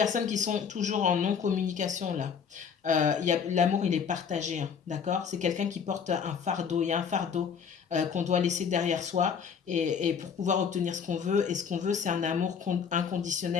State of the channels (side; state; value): right; quieter; 6.7 dB